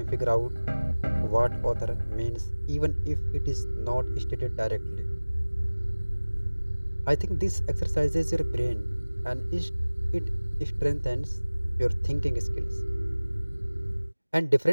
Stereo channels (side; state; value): both; inverted; correlation -1.00